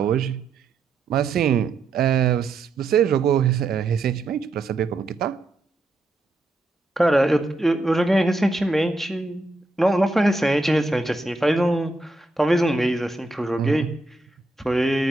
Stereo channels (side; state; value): left; quieter; 3.0 dB